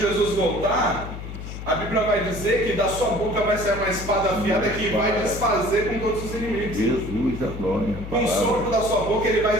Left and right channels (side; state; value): left; noise; hum, 9 dB below the sound